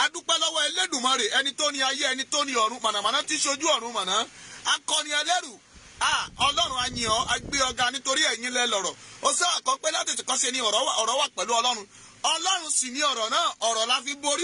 dúpẹ́ lọ́wọ́ Elédùmarè ẹni tó ní ayé ẹni tó ní ọ̀run mànàmáná tí ṣojú ọ̀run màná akọni ẹlẹ́rù Ọlọ́run a yìn ọ́ a gbé ọ̀gá nítorí ẹ̀yin lẹ lọ̀rọ̀ ó sọ àkọ́pẹ́ láti tìkọ́ ṣe ni ọ̀rọ̀ wà pẹ̀lú Ọlọ́run Ọlọ́run sì ní ọ̀rọ̀ náà ọ̀rọ̀ la fi borí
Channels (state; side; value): identical; both; correlation 1.00